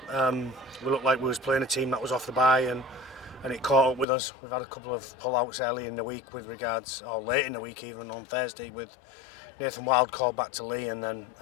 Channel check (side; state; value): right; drops out; at 4.0 s